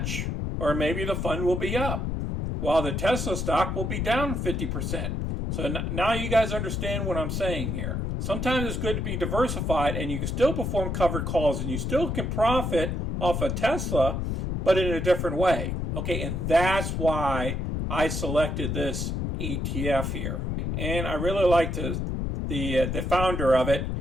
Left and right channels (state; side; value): noise; left; rumble, 2 dB below the sound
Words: Or maybe the fund will be up, while the Tesla stock will be down 50%. So now you guys understand what I'm saying here. Sometimes it's good to be diversified and you can still perform covered calls and you still can profit off of Tesla, but in a different way. Okay, and that's why I selected this ETF here. And I really like the founder of it,